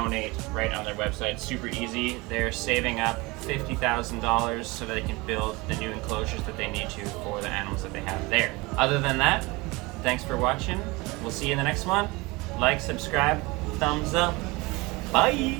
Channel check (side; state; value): left; quieter; 23.8 dB